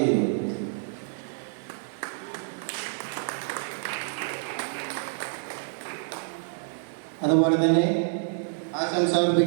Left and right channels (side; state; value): left; silent; digital silence